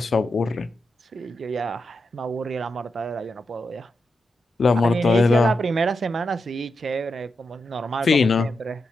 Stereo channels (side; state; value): both; normal; correlation 0.87